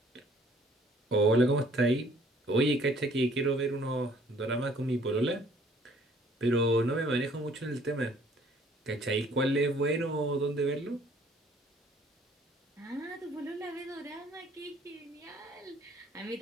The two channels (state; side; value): normal; both; correlation 0.58